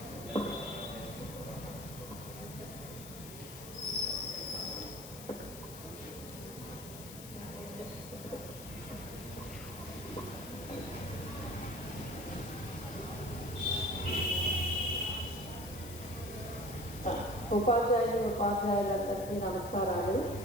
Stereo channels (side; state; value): left; noise; hiss, 13 dB below the sound